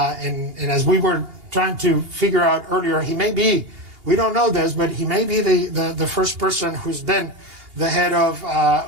we were trying to figure out earlier, he may be, we don't know this, but he may be the first person who's been the head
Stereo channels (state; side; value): late; left; 2.8 ms